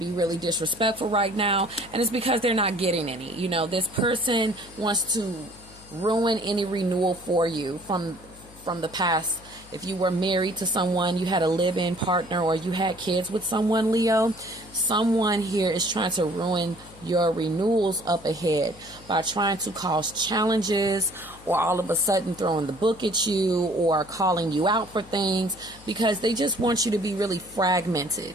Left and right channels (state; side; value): noise; left; hum, 22 dB below the sound